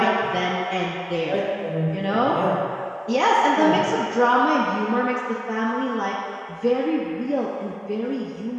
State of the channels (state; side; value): identical; both; correlation 1.00